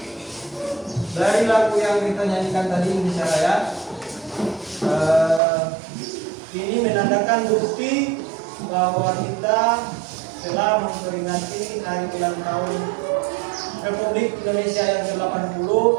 dari lagu yang kita nyanyikan tadi Indonesia Raya, ini menandakan bukti bahwa kita telah memperingati hari ulang tahun Republik Indonesia yang ke-80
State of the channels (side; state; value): left; drops out; at 5.4 s